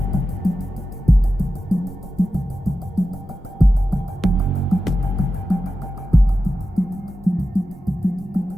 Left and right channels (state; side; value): normal; both; correlation 0.92